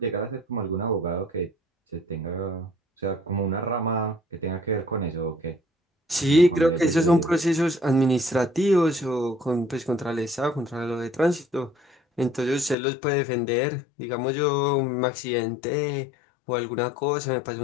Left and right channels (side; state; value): right; drops out; at 12.8 s